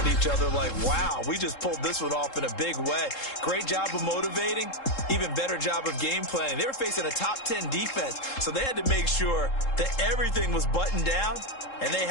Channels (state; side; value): late; right; 3.7 ms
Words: each other like, wow, we just pulled this one off in a big way. Great job of motivating, even better job of game planning. They were facing a top 10 defense, so they had to make sure that everything was buttoned down, and they